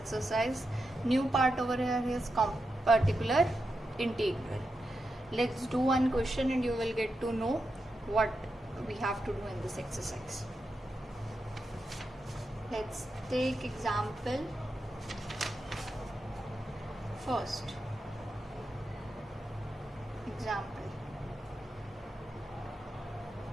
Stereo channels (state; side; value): normal; both; correlation 0.88